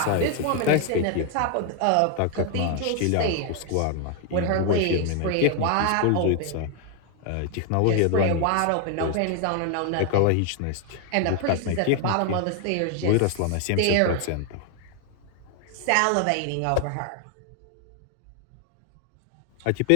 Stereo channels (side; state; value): both; different; correlation 0.00